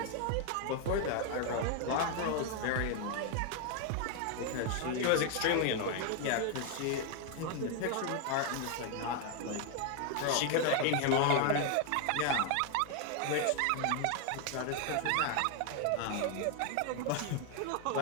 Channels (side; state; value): both; different; correlation 0.01